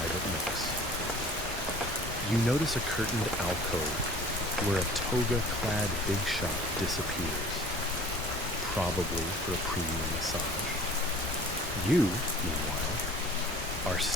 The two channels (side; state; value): both; normal; correlation 0.46